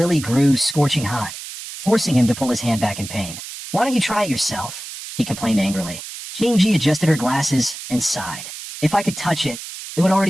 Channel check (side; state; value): right; noise; hiss, 11 dB below the sound